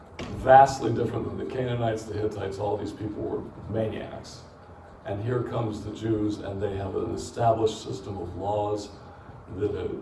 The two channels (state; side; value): identical; both; correlation 1.00